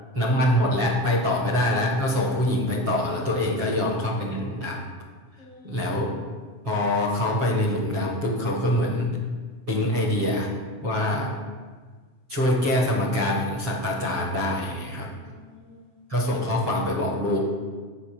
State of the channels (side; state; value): left; late; 7.3 ms